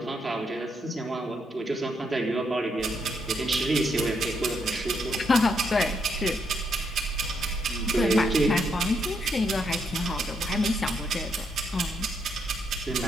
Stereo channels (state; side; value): normal; both; correlation 0.77